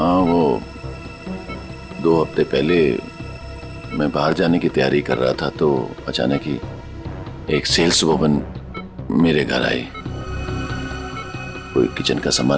वो 2 हफ्ते पहले मैं बाहर जाने की तैयारी कर रहा था तो अचानक ही एक सेल्स वुमन मेरे घर आई। कोई किचन का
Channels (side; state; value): both; identical; correlation 1.00